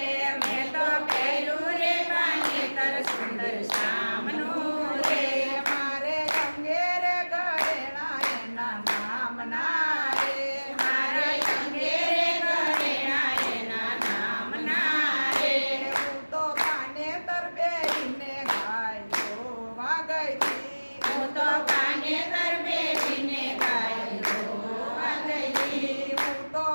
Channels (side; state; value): both; inverted; correlation -1.00